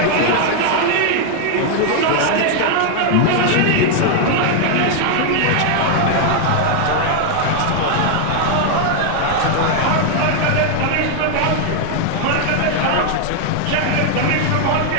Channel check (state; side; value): different; both; correlation 0.00